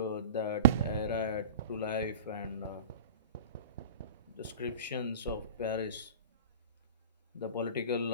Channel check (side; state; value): both; inverted; correlation -0.35